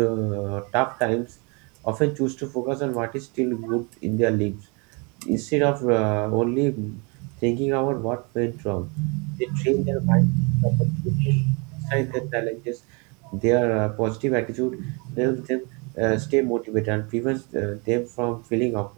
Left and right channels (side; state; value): left; quieter; 31.6 dB